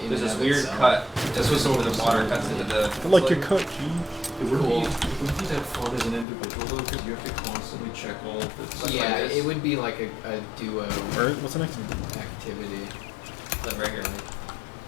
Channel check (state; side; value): drops out; right; at 6.2 s